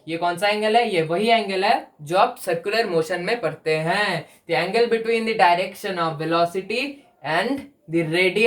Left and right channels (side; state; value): both; identical; correlation 1.00